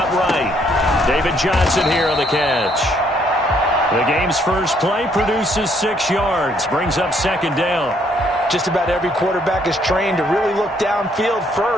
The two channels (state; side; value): normal; both; correlation 0.68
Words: right. David Johnson here on the catch. The game's first play produces 6 yards. Brings up 2nd down. Just about every quarterback is trained to really look downfield